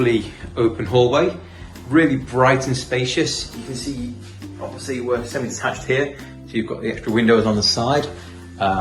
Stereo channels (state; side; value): identical; both; correlation 1.00